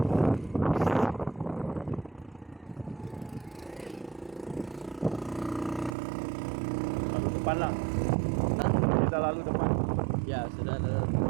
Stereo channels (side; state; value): left; drops out; at 6.0 s